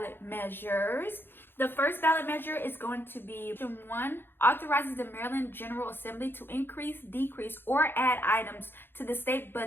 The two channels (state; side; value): late; right; 0.10 ms